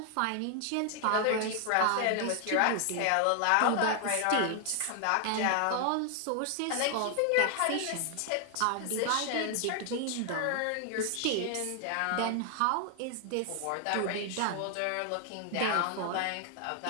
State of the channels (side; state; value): both; different; correlation 0.00